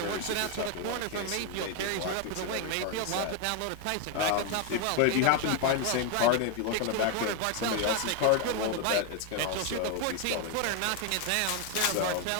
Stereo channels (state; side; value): different; both; correlation 0.01